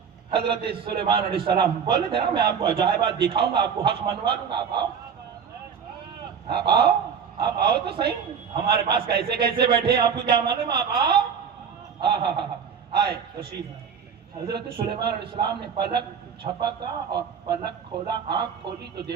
حضرت سلیمان علیہ السلام بولے تھے نا میں آپ کو عجائبات دکھاؤں گا، آپ کو حق منوا لوں گا، آپ آؤ تو صحیح، ہمارے پاس کیسے کیسے بیٹھے ہیں آپ کو کیا معلوم، آپ آؤ۔ آئے تشریف۔ حضرت سلیمان علیہ السلام نے پلک جھپکا اور پلک کھولا، آنکھ کھولی تو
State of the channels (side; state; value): left; quieter; 7.0 dB